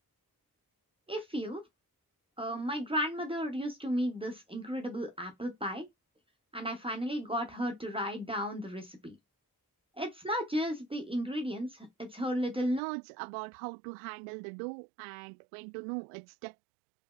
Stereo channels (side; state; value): left; drops out; at 12.8 s